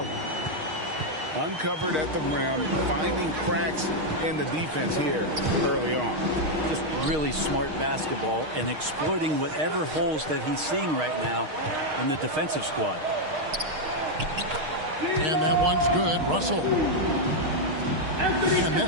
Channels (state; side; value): late; left; 6.5 ms